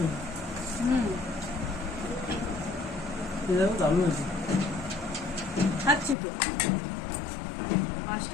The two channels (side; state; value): right; drops out; at 6.2 s